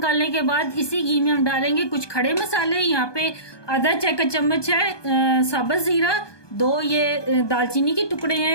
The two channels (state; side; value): late; right; 1.2 ms